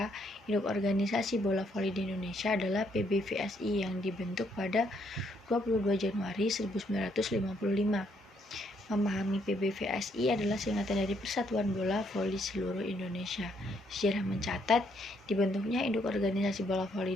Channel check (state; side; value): normal; both; correlation 0.72